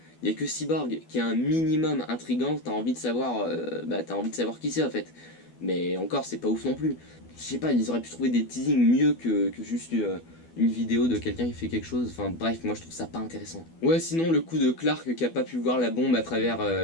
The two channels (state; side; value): late; right; 12 ms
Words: Il y a que Cyborg qui est un minimum intriguant, t'as envie de savoir qui c'est en fait. Mais encore, c'est pas ouf non plus. Je sais pas, ils auraient pu trouver des teasings mieux que juste une vidéo de quelqu'un qui fait quelque chose. Enfin bref, moi je trouve ça pas intéressant. Ouais, sinon le coup de Clark qui a pas pu voir la bombe à travers